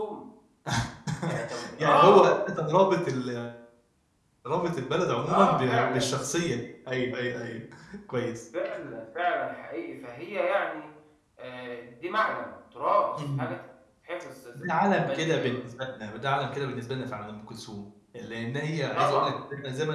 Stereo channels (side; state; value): both; identical; correlation 1.00